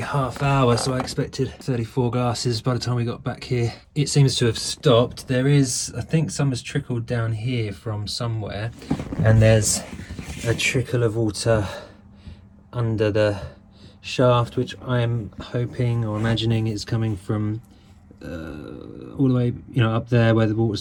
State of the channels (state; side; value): identical; both; correlation 1.00